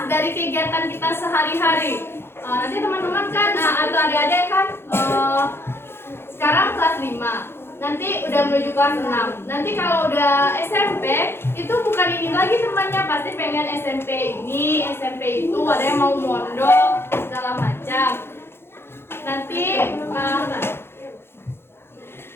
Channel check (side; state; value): right; late; 0.11 ms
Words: dari kegiatan kita sehari-hari. Nanti teman-teman kan atau adik-adik kan sekarang kelas 5, nanti udah menuju kelas 6. Nanti kalau udah SMP itu bukan ini lagi temannya, pasti pengen SMP ini, SMP itu, ada yang mau mondok segala macam. Nanti